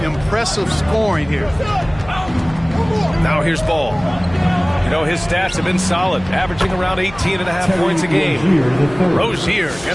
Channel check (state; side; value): noise; left; hum, 17 dB below the sound